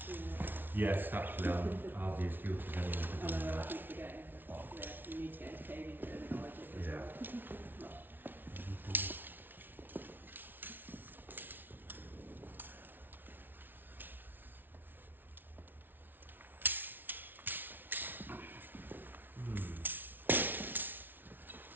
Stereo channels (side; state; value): left; late; 0.093 ms